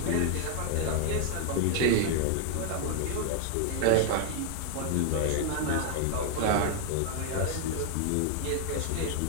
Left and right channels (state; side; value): different; both; correlation 0.00